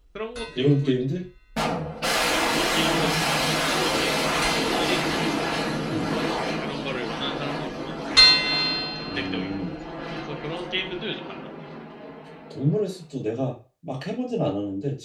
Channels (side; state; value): both; identical; correlation 1.00